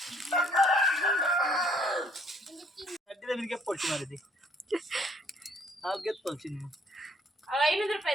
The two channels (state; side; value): normal; both; correlation 0.62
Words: ಪಡ್ಸಿ ಮಾಡಿದ್ದಿ ನಾವು ಗೆದ್ದು ಪಡ್ಸಿ ನೀವು 500